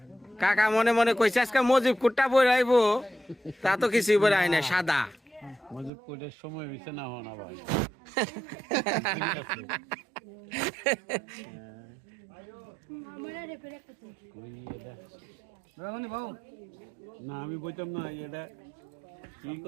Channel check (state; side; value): drops out; left; at 5.9 s